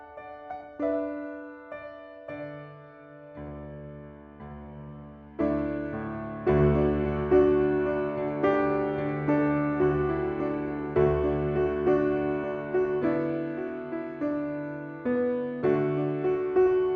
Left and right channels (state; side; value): identical; both; correlation 1.00